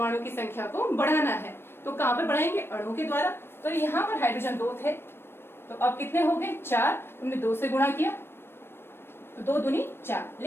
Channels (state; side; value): late; right; 0.11 ms